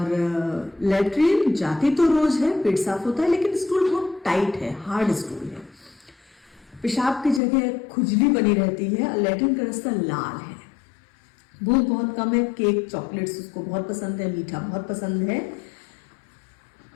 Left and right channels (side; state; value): right; drops out; at 7.4 s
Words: लैट्रिन जाती तो रोज है, पेट साफ होता है, लेकिन स्टूल बहुत टाइट है, हार्ड स्टूल है। पेशाब की जगह खुजली बनी रहती है, लैट्रिन का रास्ता लाल है। भूख बहुत कम है। केक, चॉकलेट्स उसको बहुत पसंद है, मीठा बहुत पसंद है।